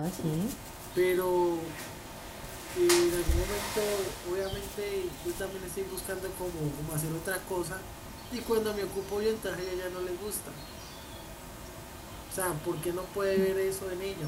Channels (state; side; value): identical; both; correlation 1.00